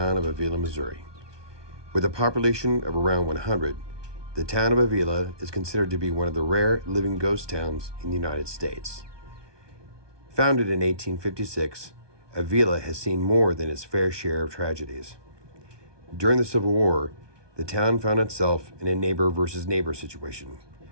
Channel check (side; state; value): left; late; 1.2 ms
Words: of Avilla, Missouri. With a population of around 100, the town of Avilla is considered to be one of the rare living ghost towns in the United States. Founded in 1856, Avilla has seen more than its fair share of tragedies. During the Civil War, the town found itself in a neighbor versus neighbor situation.